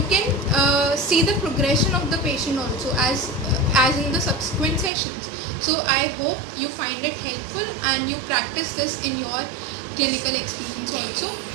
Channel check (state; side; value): drops out; left; at 4.9 s